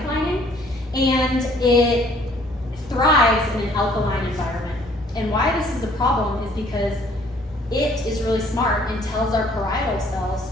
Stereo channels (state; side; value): normal; both; correlation 0.59